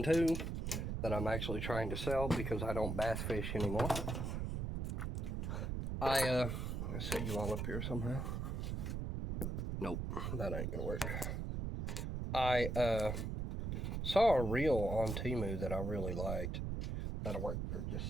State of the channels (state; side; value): noise; right; rumble, 2 dB below the sound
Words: 2 that I'm actually trying to sell because I don't bass fish anymore. Let's set you all up here somehow. Nope, that ain't gonna work. I saw a reel on Temu that I really liked. That'll work for just